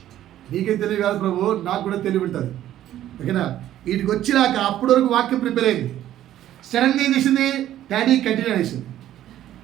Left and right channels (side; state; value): left; quieter; 12.5 dB